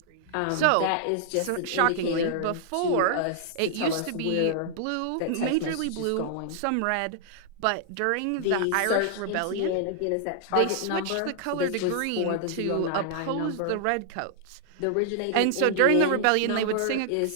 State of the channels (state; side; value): different; both; correlation -0.01